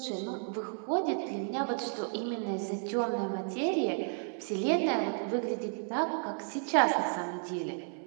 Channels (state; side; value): silent; left; 56 dB below the other